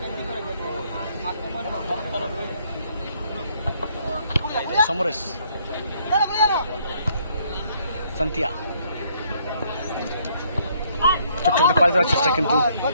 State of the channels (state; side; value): inverted; both; correlation -0.67